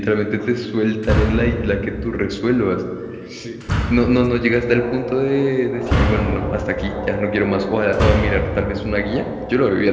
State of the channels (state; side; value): identical; both; correlation 1.00